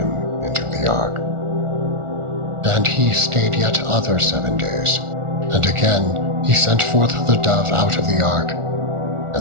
into the ark. And he stayed yet other 7 days, and again he sent forth the dove out of the ark.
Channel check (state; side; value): late; left; 1.4 ms